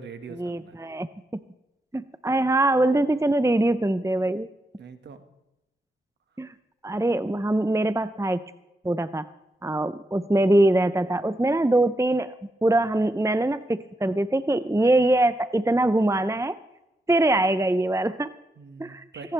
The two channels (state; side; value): normal; both; correlation 0.83